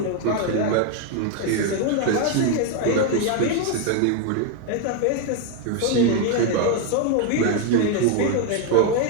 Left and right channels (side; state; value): both; different; correlation 0.01